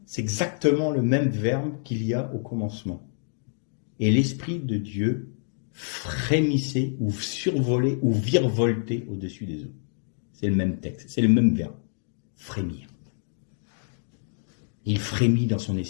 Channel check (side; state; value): right; silent; digital silence